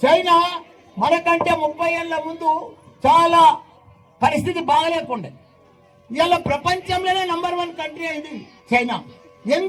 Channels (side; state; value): both; identical; correlation 1.00